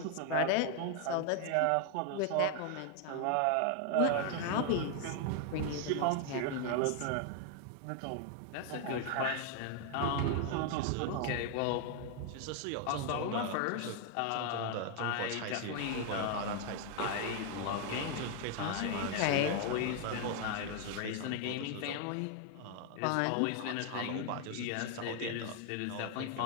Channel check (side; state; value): both; different; correlation 0.00